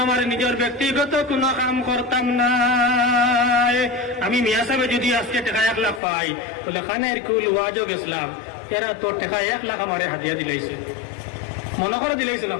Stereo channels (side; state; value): right; drops out; at 6.0 s